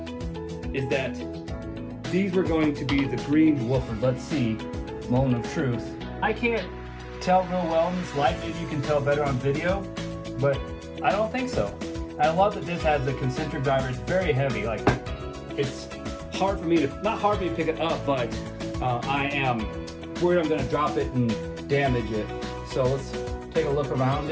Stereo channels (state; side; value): identical; both; correlation 1.00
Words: is that these were going to be the green woofers. Let's see, moment of truth. I can't tell real well in this light. Maybe you can tell better on video, but I don't think so. I love that this has the concentric driver. It's very heavy. Like, it's hard for me to, not hard for me to pick it up, but I am worried I'm gonna drop it and damage it. So let's take a look around